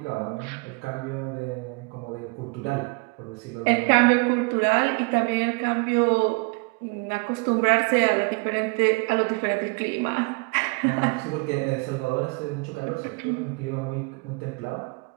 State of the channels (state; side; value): quieter; left; 30.1 dB